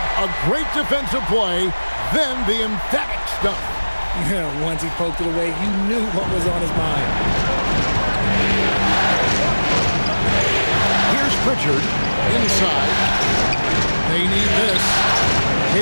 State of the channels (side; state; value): both; inverted; correlation -1.00